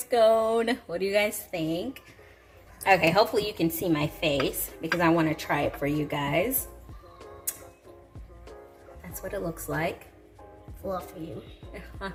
What do you guys think? Okay, hopefully you can see my face because I want to try it for you guys. That's what it looks like. Fluffy.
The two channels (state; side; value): identical; both; correlation 1.00